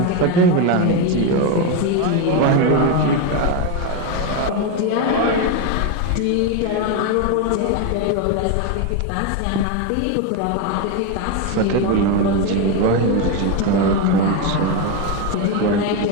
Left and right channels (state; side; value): different; both; correlation 0.02